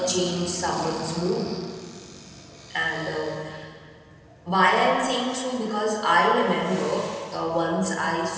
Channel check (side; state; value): both; identical; correlation 1.00